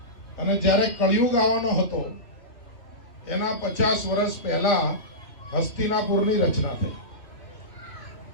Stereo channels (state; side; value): late; right; 3.1 ms